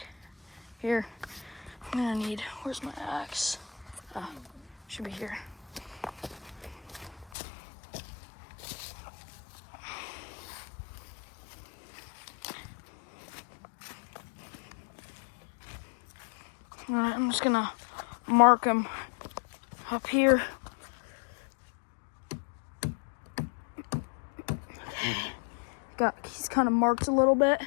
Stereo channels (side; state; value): right; drops out; at 7.3 s